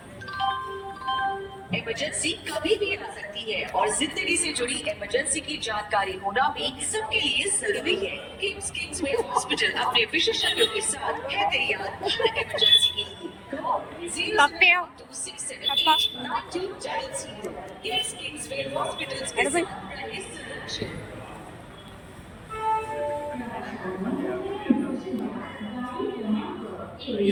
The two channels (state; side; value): identical; both; correlation 1.00